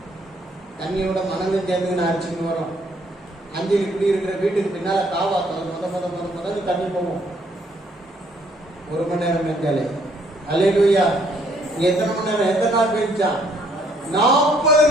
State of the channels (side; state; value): both; normal; correlation 0.66